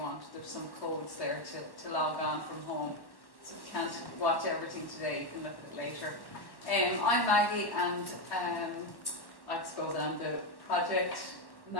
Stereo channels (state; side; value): late; right; 1.1 ms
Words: There's some codes there to log on from home. So if you can't watch everything today, you can look at it later. I'm Maggie, and I suppose I'm the project